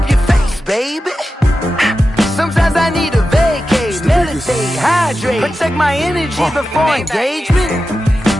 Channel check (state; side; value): normal; both; correlation 0.92